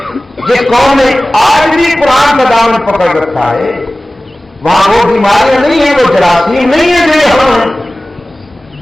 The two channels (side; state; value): both; normal; correlation 0.97